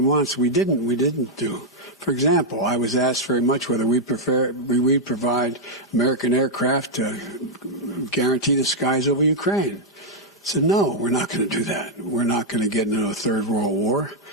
wants we didn't do. For example, I was asked very much whether we provide American aircraft to guarantee the skies over Ukraine. I said, no, we're not going to do that. We're not going to get into a third world war,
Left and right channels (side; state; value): both; normal; correlation -0.03